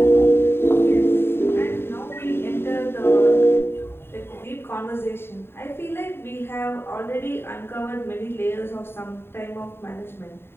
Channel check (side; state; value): right; late; 0.11 ms